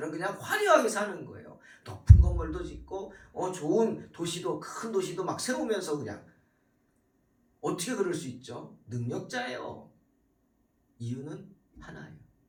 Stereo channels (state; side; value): identical; both; correlation 1.00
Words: 그냥 화려하게 사는 거예요. 높은 건물도 짓고 좋은 도시도, 큰 도시도 막 세우면서 그냥. 어떻게 그럴 수 있죠? 능력자예요. 이유는 하나예요.